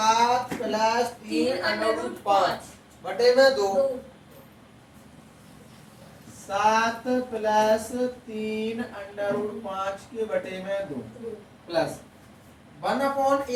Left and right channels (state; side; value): identical; both; correlation 1.00